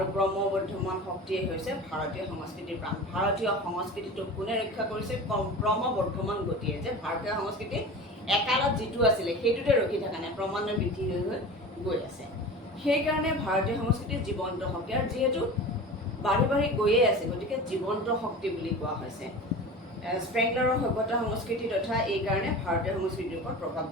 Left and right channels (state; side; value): normal; both; correlation 0.34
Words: ক্ৰমবৰ্ধমান শক্তিয়ে হৈছে ভাৰতীয় সংস্কৃতিৰ প্ৰাণ। ভাৰতীয় সংস্কৃতিটোক কোনে ৰক্ষা কৰিছে? ক্ৰমবৰ্ধমান গতিয়ে, যে ভাৰতীয় সংস্কৃতি একালত যিটো আছিলে সেইটোতে ৰখি থকা নাই, ক্ৰমান্বয়ে বৃদ্ধি হৈ গৈ আছে। সেইকাৰণে ভাৰতীয় সংস্কৃতিৰ জীৱন্ত শক্তি, আৰু যিহেতু বাঢ়ি বাঢ়ি গৈয়ে আছে গতিকে জীৱন্ত শক্তি বুলি কোৱা হৈছে। স্প্ৰেংলাৰৰ সভ্যতা সংস্কৃতি তথা এইকাৰণে ভাৰতীয় সংস্কৃতিৰ ওপৰত প্ৰভাৱ